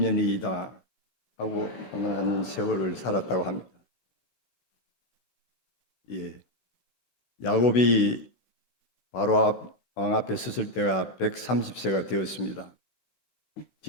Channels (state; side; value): late; right; 15 ms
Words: 하고 한 세월을 살았다고 합니다. 예, 야곱이 바로 왕 앞에 섰을 때가 130세가 되었습니다.